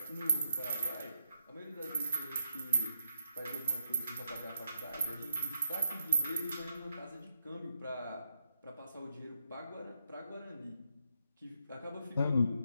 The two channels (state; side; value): inverted; both; correlation -0.79